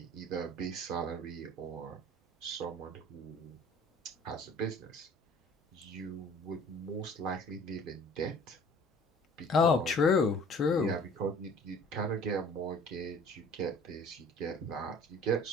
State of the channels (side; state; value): both; normal; correlation 0.50